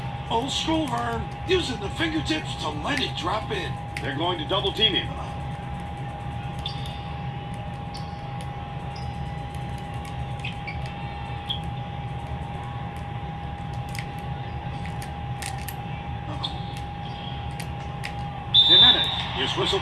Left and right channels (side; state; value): both; identical; correlation 1.00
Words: Old school, Vern. Using the fingertips to let it drop in. They're going to double team him. Jimenez is